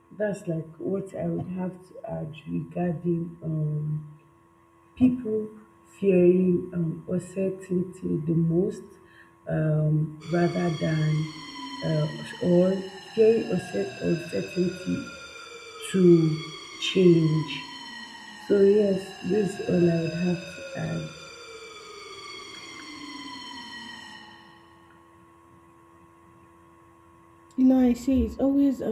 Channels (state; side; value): identical; both; correlation 1.00